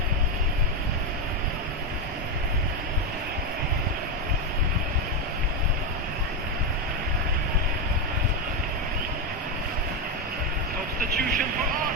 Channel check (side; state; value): both; normal; correlation 0.08